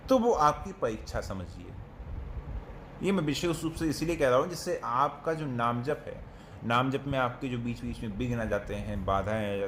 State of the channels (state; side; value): identical; both; correlation 1.00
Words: तो वो आपकी परीक्षा समझिए। ये मैं विशेष रूप से इसीलिए कह रहा हूँ जिससे आपका जो नाम जप है, नाम जप में आपके जो बीच बीच में विघ्न आ जाते हैं, बाधाएं आ